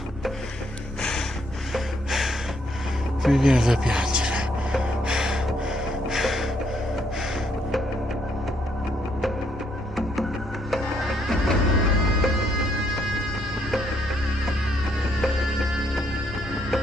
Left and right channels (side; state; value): both; normal; correlation 0.72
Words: Mi viene da piangere.